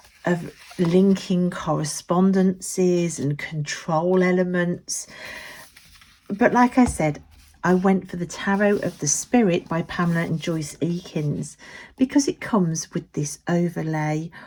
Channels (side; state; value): both; identical; correlation 1.00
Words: linking correspondences and control elements. But like I said, I went for the Tarot of the Spirit by Pamela and Joyce Eakins because it comes with this overlay